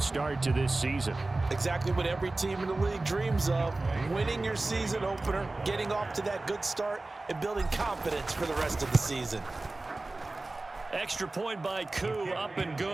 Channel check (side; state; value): left; quieter; 3.1 dB